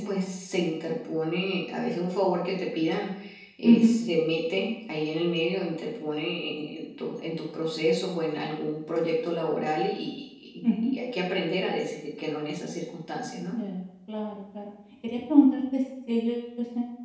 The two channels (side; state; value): both; identical; correlation 1.00